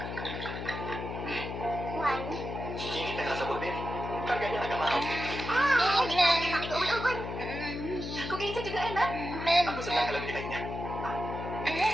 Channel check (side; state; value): left; noise; hum, 6 dB below the sound